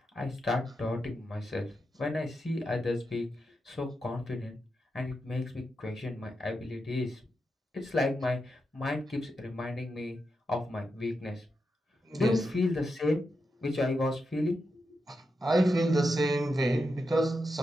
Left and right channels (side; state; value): both; normal; correlation 0.87